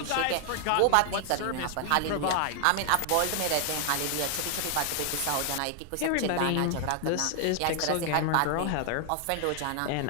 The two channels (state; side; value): different; both; correlation 0.00